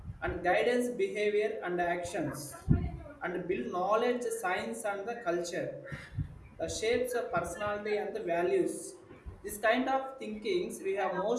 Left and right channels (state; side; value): identical; both; correlation 1.00